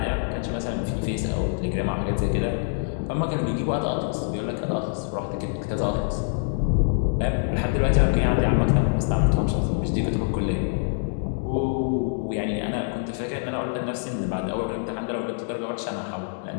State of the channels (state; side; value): silent; right; digital silence